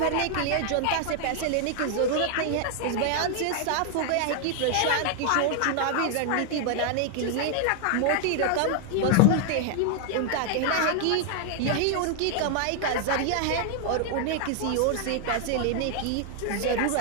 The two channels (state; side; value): different; both; correlation 0.00